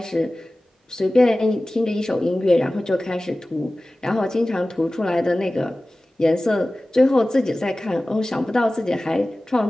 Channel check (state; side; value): normal; both; correlation 0.97